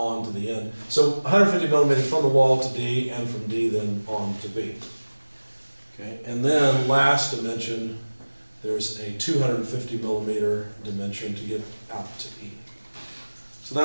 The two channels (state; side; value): inverted; both; correlation -1.00